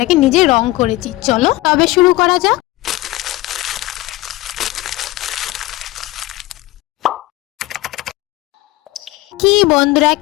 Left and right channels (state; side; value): quieter; right; 18.6 dB